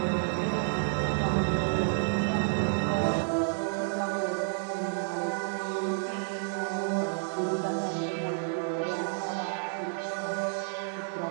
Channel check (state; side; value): silent; left; digital silence